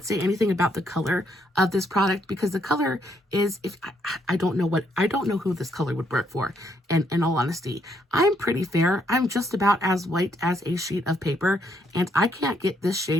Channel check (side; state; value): both; normal; correlation 0.73